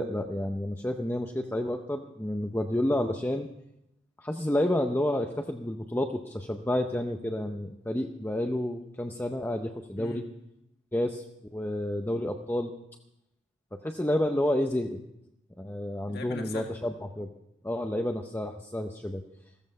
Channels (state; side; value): normal; both; correlation 0.88